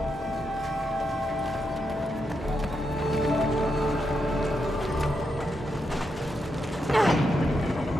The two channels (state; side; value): normal; both; correlation 0.83